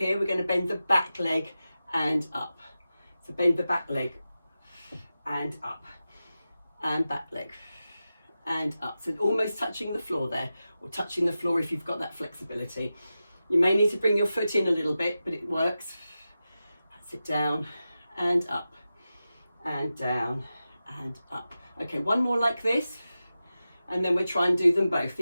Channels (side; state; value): both; inverted; correlation -0.93